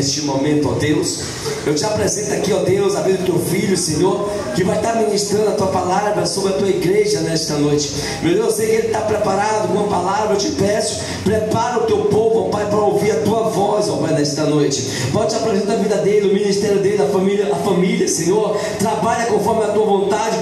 momento, ó Deus, eu te apresento aqui, ó Deus, a vida do teu filho, Senhor, que vai estar ministrando a tua palavra sobre a tua igreja nesta noite. Meu Deus, eu sei que ele está preparado com uma palavra. Eu te peço, prepara o teu povo, ó Pai, para ouvir a tua voz, ó Pai, nesta noite. Pode te apresentar a vida dele, o ministério dele, a família, Senhor. Trabalha conforme a tua vontade,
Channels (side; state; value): both; identical; correlation 1.00